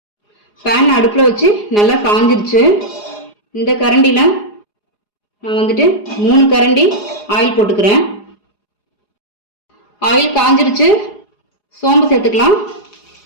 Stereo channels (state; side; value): late; right; 4.8 ms